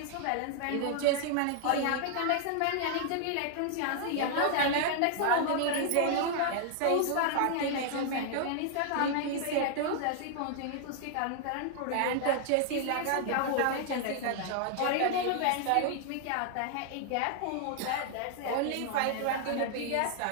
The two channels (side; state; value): both; different; correlation 0.00